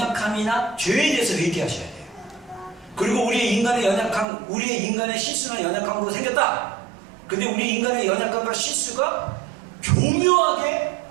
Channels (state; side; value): drops out; left; at 4.2 s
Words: 죄에 대해서 회개하셔야 돼요. 그리고 우리의 인간의 연약함, 우리의 인간의 실수나 연약함으로 생겼다. 근데 우리 인간의 연약함과 실수가 교묘하게